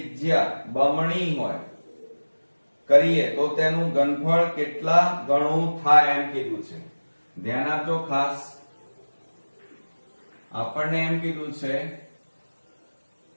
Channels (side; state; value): both; inverted; correlation -1.00